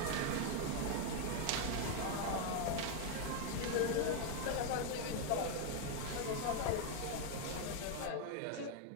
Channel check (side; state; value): both; different; correlation 0.01